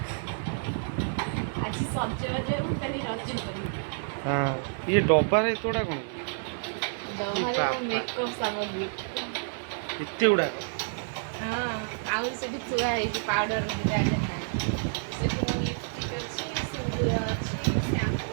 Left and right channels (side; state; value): left; silent; 59 dB below the other